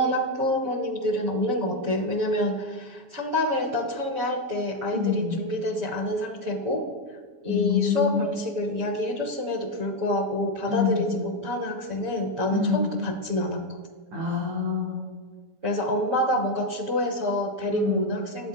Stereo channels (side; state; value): left; late; 7.1 ms